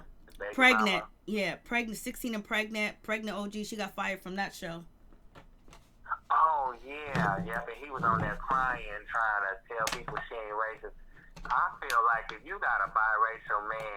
pregnant. Mama. Yeah, pregnant, 16 and pregnant OG. She got fired from that show. Oh, yeah, but he was on there crying, trying to tell people she ain't racist. I feel like if you got a biracial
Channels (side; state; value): both; identical; correlation 1.00